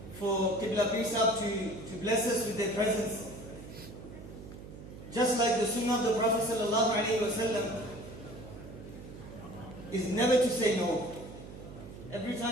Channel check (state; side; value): noise; right; hum, 14 dB below the sound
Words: for Qibla Pir Sahib to bless us with their presence. Just like the sunnah of the Prophet sallallahu alaihi wasallam is never to say no. Every